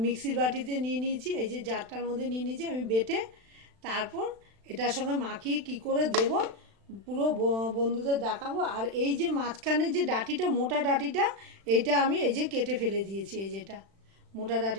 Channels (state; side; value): late; left; 36 ms